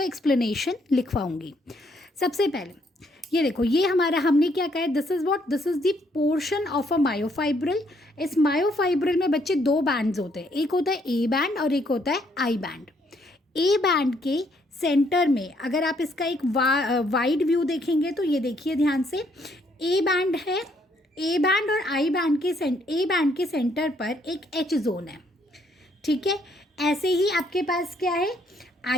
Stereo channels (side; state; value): both; normal; correlation 0.70